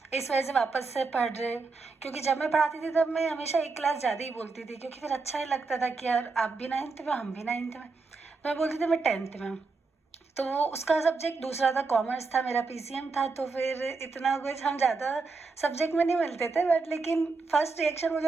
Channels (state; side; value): quieter; left; 4.2 dB